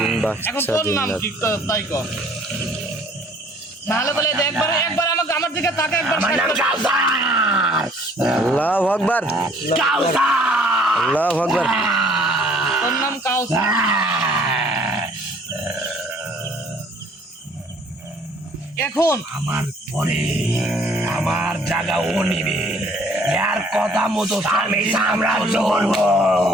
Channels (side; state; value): both; normal; correlation 0.58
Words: এখন তোর নাম কি তাই ক? নাহলে বলে একবার আমাকে আমার দিকে তাকে একবার আমার নাম কাউসার। আল্লাহু আকবার কাউসার। আল্লাহু আকবার তোর নাম কাউসার। এখন আমার পরে আমার জায়গা ও নিবে, এর কথা মতো আমি সাম্রাজ্য করবো।